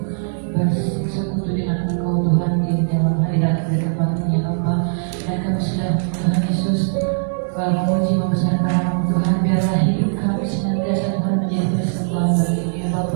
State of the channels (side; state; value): left; silent; digital silence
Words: bersekutu dengan Engkau Tuhan di dalam hadirat berkembangnya Bapa. Dan kami sudah Tuhan Yesus memuji membesarkan nama-Mu Tuhan. Biarlah hidup kami senantiasa Tuhan menjadi persembahan bagi-Mu ya